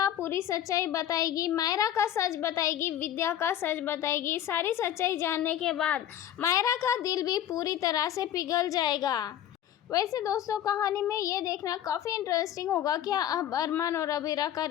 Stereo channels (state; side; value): quieter; right; 11.1 dB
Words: पूरी सच्चाई बताएगी, मायरा का सच बताएगी, विद्या का सच बताएगी। सारी सच्चाई जानने के बाद मायरा का दिल भी पूरी तरह से पिघल जाएगा। वैसे दोस्तों, कहानी में ये देखना काफ़ी इंटरेस्टिंग होगा, क्या अब अरमान और अबीरा का